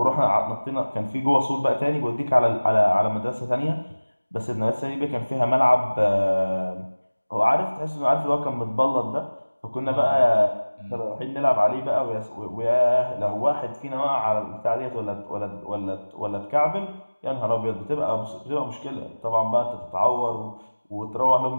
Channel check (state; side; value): inverted; both; correlation -1.00